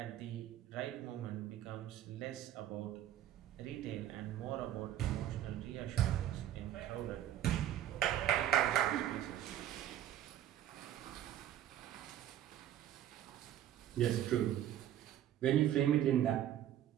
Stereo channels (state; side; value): quieter; left; 11.6 dB